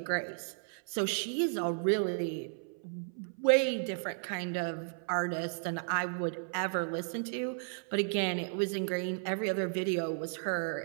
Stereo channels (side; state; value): left; silent; 55 dB below the other